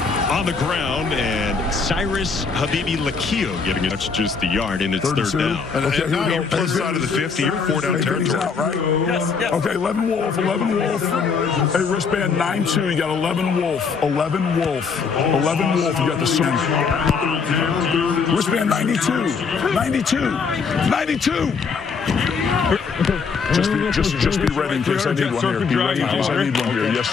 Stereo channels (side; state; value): right; quieter; 5.4 dB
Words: On the ground, and Cyrus Habibi Lakio getting it. That's just the yard, and it's 3rd down. And now you're plus side of the 50. You're 4-down territory. Out, right? Yes. Okay, 11 Wolf. Hey, wristband 9-2. You got 11 Wolf. 11 Wolf. You got the swing. Wristband 92. 92. Just be ready in case I need one here. Be ready in case I need one here. Yes,